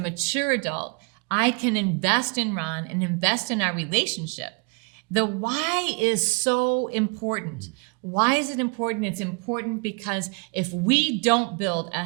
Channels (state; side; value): quieter; left; 33.2 dB